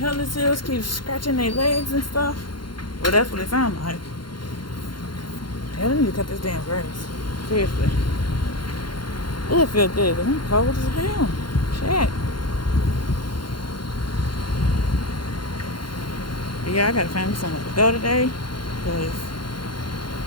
this is. Keep scratching their legs and stuff. Well, that's what it sounds like. Hell, I need to cut this damn grass. Seriously. Oh, it feels good, but I'm cold as hell. Shit. But yeah, I gotta find me somewhere to go today. Because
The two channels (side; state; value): right; late; 0.72 ms